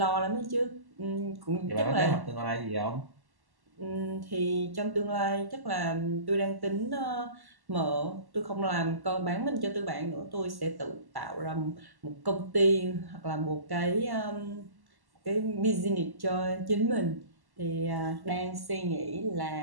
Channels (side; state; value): left; late; 1.1 ms